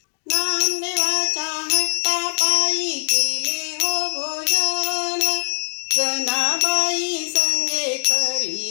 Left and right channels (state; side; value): silent; right; digital silence